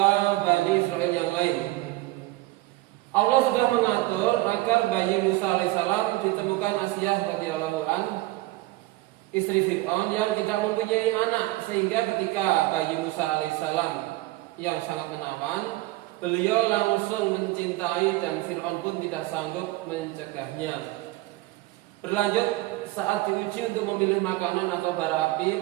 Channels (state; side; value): quieter; left; 19.1 dB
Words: Bani Israel yang lain. Allah sudah mengatur agar bayi Musa alaihissalam ditemukan Asyah radhiyallahu an, istri Fir'aun yang tidak mempunyai anak, sehingga ketika bayi Musa alaihissalam yang sangat menawan, beliau langsung mencintai dan Fir'aun pun tidak sanggup mencegahnya. Berlanjut, saat diuji untuk memilih makanan atau bara api,